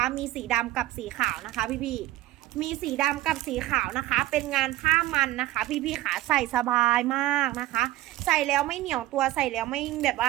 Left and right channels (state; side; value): quieter; left; 16.1 dB